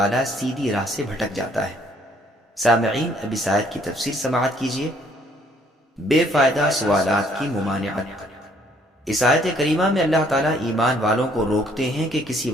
سیدھی راہ سے بھٹک جاتا ہے۔ سامعین، اب اس آیت کی تفسیر سماعت کیجیے۔ بے فائدہ سوالات کی ممانعت۔ اس آیت کریمہ میں اللہ تعالیٰ ایمان والوں کو روکتے ہیں کہ کسی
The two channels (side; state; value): both; normal; correlation 0.64